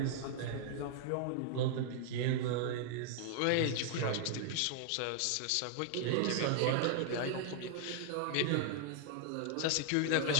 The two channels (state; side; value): different; both; correlation 0.00